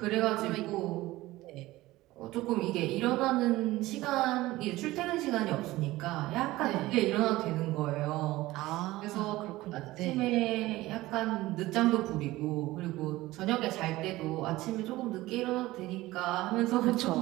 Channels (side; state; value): left; quieter; 18.0 dB